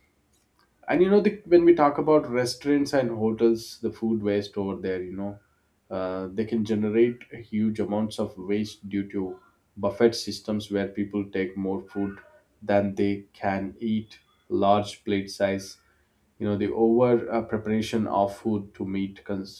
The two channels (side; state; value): both; identical; correlation 1.00